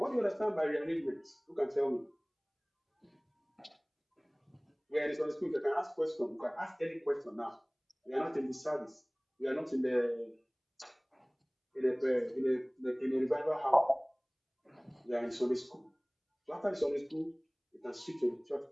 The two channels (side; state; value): both; identical; correlation 1.00